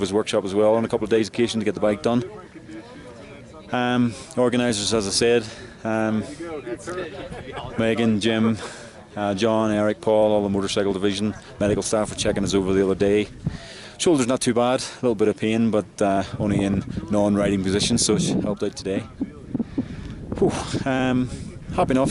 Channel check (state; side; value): identical; both; correlation 1.00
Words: workshop as well on a couple of days' occasion to get the bike done. Organisers, as I said, Megan, Jim, John, Eric, Paul, all the motorcycle division, medical staff were checking us over the other day. Shoulder's not too bad, a little bit of pain, but only in non-riding position, so it helped out today. Whew, happy